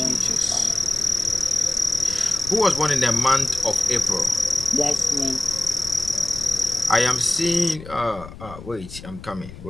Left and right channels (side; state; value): left; noise; rumble, 15 dB below the sound